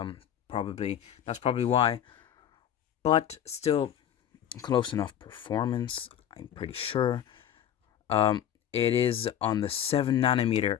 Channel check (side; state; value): right; quieter; 10.1 dB